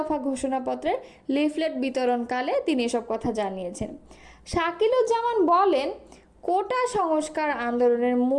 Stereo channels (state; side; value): identical; both; correlation 1.00